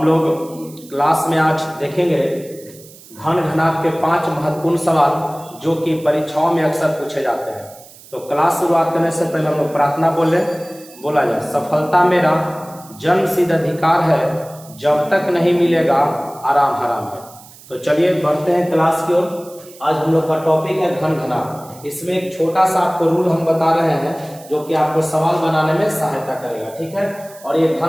लोग क्लास में आज देखेंगे घन घनाभ के 5 महत्वपूर्ण सवाल जो कि परीक्षाओं में अक्सर पूछे जाते हैं। तो क्लास शुरुआत करने से पहले हम लोग प्रार्थना बोला जाए। सफलता मेरा जन्मसिद्ध अधिकार है, जब तक नहीं मिलेगा आराम हराम है। तो चलिए बढ़ते हैं क्लास की ओर। आज हम लोग का टॉपिक है घन घनाभ। इसमें एक छोटा सा आपको रूल हम बता रहे हैं जो कि आपको सवाल बनाने में सहायता करेगा, ठीक है। और ये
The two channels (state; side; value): noise; right; hiss, 21 dB below the sound